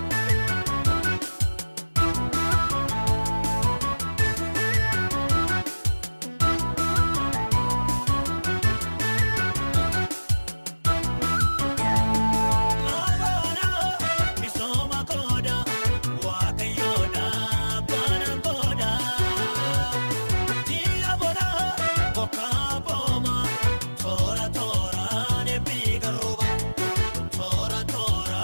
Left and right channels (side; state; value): both; inverted; correlation -1.00